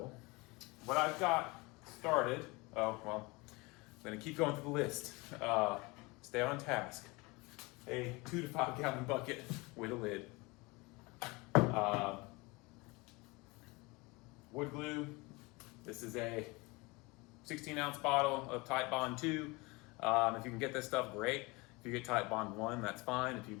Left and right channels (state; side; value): quieter; right; 25.2 dB